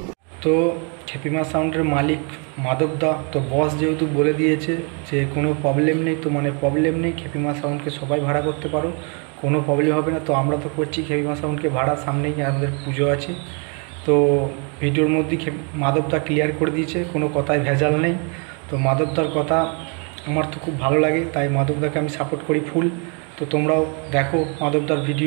তো খ্যাপিমা সাউন্ডের মালিক মাধব দা, তো বস যেহেতু বলে দিয়েছে যে কোনো প্রবলেম নেই, তো মানে প্রবলেম নেই, খ্যাপিমা সাউন্ডকে সবাই ভাড়া করতে পারো, কোনো প্রবলেম হবে না। তো আমরা তো করছি খ্যাপিমা সাউন্ডকে ভাড়া, সামনেই আমাদের পুজো আছে। তো ভিডিওর মধ্যেই মাধবদা ক্লিয়ার করে দিয়েছে, কোনো কথায় ভেজাল নেই। তো মাধবদার কথা আমার তো খুব ভালো লাগে, তাই মাধবদাকে আমি সাপোর্ট করি ফুল। তো তোমরাও দেখো মাধবদার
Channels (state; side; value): quieter; left; 36.7 dB